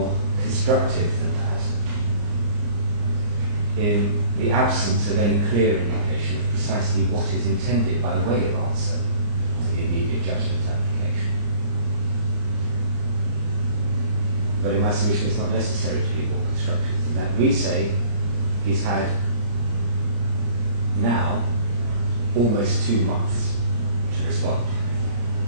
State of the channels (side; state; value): left; late; 34 ms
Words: constructive than that in the absence of any clear indication of precisely what is intended by way of answer to the immediate judgment application. But in my submission, it's not necessary to be more constructive than that. We say he's had now almost 2 months to respond